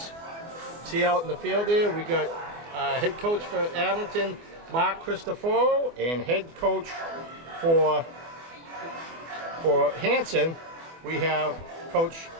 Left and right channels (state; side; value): late; left; 24 ms